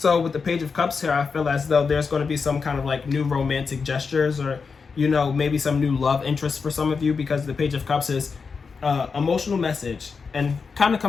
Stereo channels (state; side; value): quieter; right; 5.2 dB